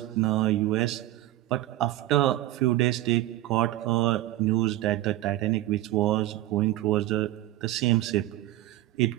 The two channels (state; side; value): quieter; left; 15.4 dB